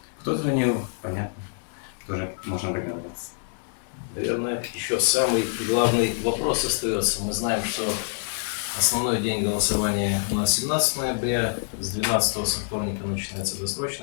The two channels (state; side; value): silent; right; digital silence